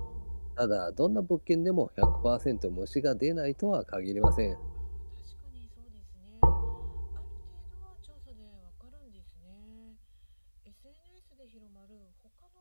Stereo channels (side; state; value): both; inverted; correlation -1.00